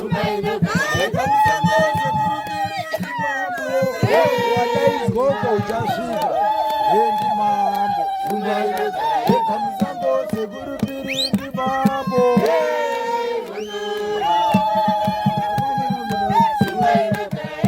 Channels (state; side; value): identical; both; correlation 1.00